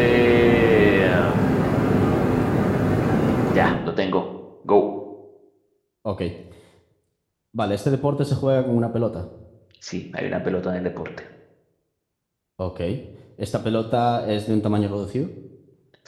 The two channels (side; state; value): both; identical; correlation 1.00